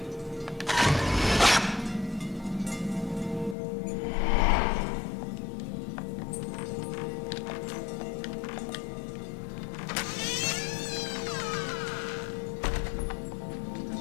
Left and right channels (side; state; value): right; drops out; at 3.6 s